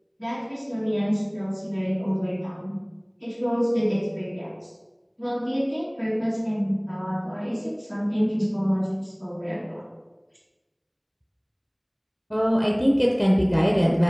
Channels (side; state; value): both; identical; correlation 1.00